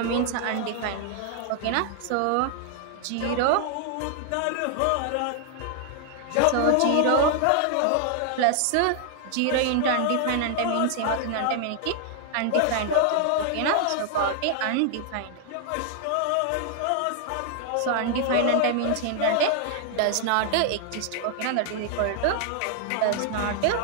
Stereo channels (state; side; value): different; both; correlation 0.00